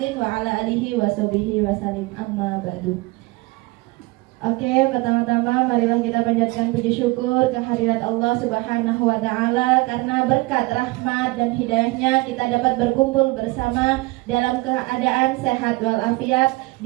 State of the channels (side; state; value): left; quieter; 22.8 dB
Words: wa ala alihi washabihi wasallim. Amma ba'du. Oke, pertama-tama marilah kita panjatkan puji syukur kehadirat Allah Subhanahu wa taala karena berkat rahmat dan hidayahnya kita dapat berkumpul bersama dalam keadaan sehat walafiat